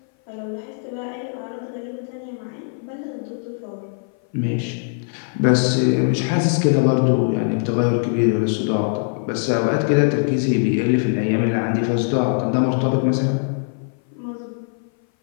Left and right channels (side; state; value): right; silent; 57 dB below the other